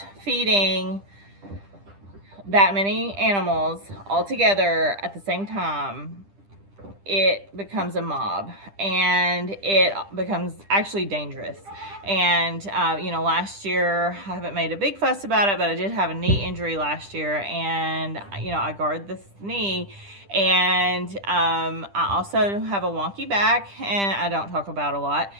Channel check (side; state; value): left; late; 10 ms